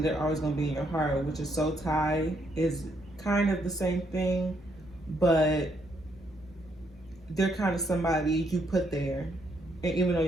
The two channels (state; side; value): normal; both; correlation 0.74